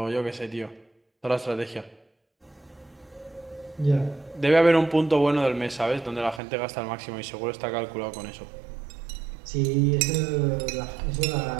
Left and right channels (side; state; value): left; drops out; at 6.4 s